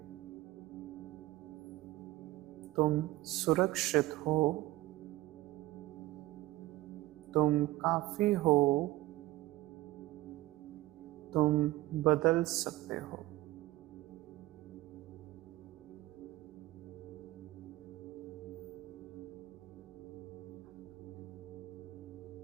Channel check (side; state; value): left; quieter; 17.4 dB